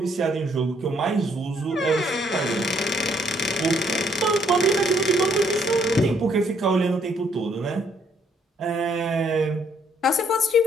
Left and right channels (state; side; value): normal; both; correlation 0.68